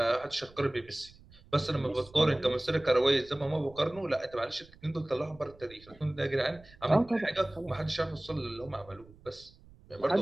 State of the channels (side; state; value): right; noise; rumble, 24 dB below the sound